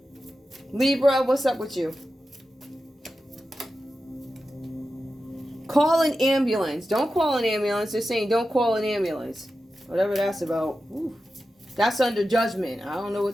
Libra, what's up with you? Call an ambulance. Don't call an ambulance. They're saying don't call an ambulance. Whatever that's about. Ooh. That's under judgment. I don't know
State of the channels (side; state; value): both; normal; correlation 0.92